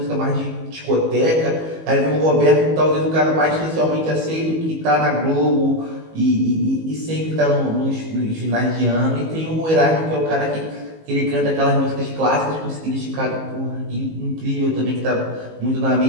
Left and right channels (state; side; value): late; left; 19 ms